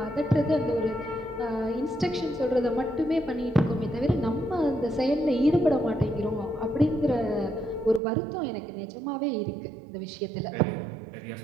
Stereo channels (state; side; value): drops out; left; at 8.0 s